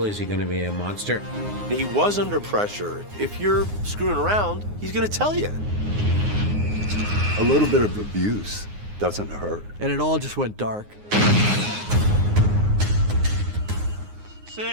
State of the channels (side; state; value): left; late; 9.6 ms